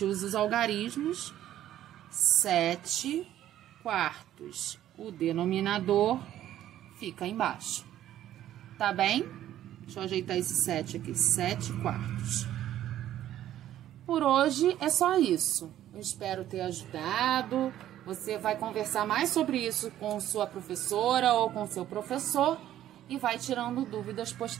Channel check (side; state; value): left; quieter; 12.3 dB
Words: usa os algarismos, 7/4. O denominador fica embaixo. Tá bem? Deixa eu ajeitar esse 7 aqui, 7/4. Por hoje é só isso. Eu espero ter ajudado. Você vai conversar mais sobre isso com sua professora ou com seu professor e vai tirando dúvidas